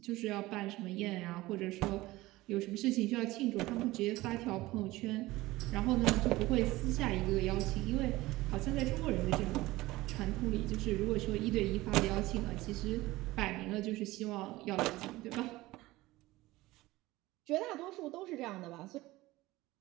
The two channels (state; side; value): quieter; left; 18.7 dB